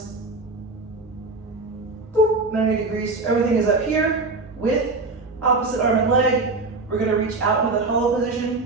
boop, 90 degrees. Everything is up here with opposite arm and leg. We're gonna reach out into the hollow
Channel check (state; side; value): quieter; left; 3.5 dB